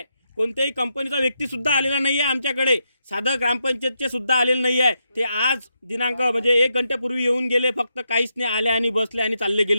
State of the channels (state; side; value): inverted; both; correlation -0.83